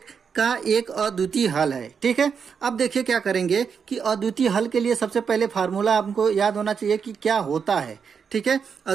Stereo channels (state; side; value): quieter; left; 6.4 dB